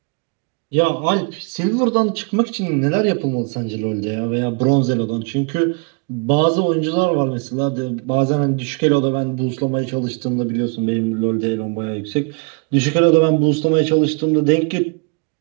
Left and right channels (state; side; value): quieter; left; 34.4 dB